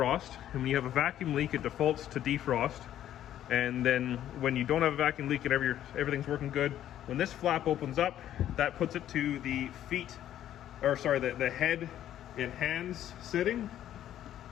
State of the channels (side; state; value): right; quieter; 11.6 dB